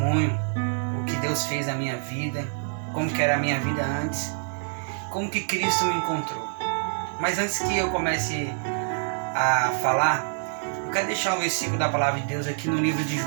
o que Deus fez na minha vida, como que era a minha vida antes, como que Cristo me encontrou. Mas antes que eu comece a falar, eu quero deixar um versículo da palavra de Deus aqui no livro de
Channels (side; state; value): left; silent; digital silence